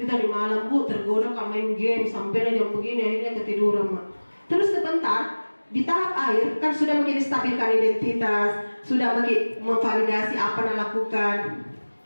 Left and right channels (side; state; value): both; inverted; correlation -1.00